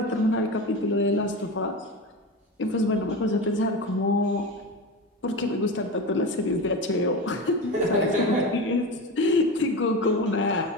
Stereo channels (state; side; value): normal; both; correlation 0.24